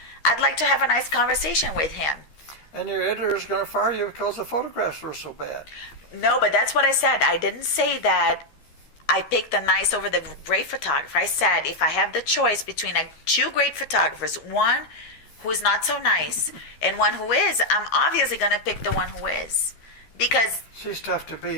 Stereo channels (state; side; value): late; right; 13 ms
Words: I'd like to have a nice conversation with him. And your editor is going to fire you because the photographs were so bad. No, but that's what I said. I didn't say that I picked the nice over the great photographer. I said if I have the choice between two great photographers, one who is not so nice and one who is, I'm obviously going to pick the one who is. Because she's tough to